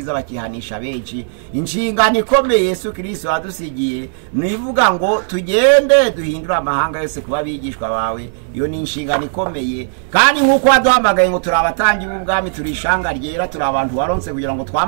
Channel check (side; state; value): left; silent; digital silence